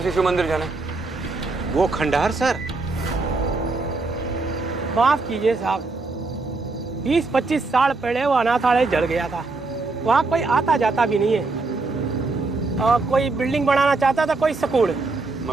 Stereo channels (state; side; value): quieter; left; 3.6 dB